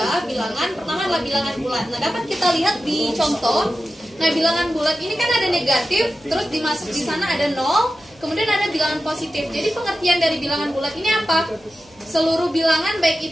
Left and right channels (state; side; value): noise; right; hum, 29 dB below the sound